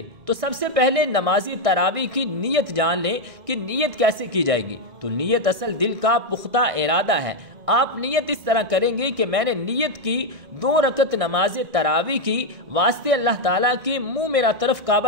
تو سب سے پہلے نماز تراویح کی نیت جان لیں کہ نیت کیسے کی جائے گی۔ تو نیت اصل دل کا پختہ ارادہ ہے۔ آپ نیت اس طرح کریں گے کہ میں نے نیت کی 2 رکعت نماز تراویح کی واسطے اللہ تعالیٰ کے منہ میرا طرف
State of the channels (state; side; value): late; left; 1.6 ms